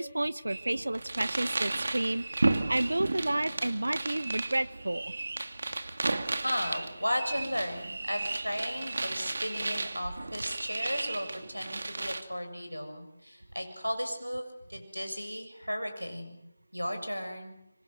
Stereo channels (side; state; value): both; inverted; correlation -0.98